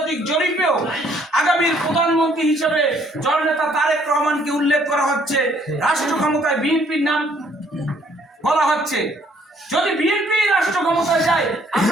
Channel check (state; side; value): normal; both; correlation 0.64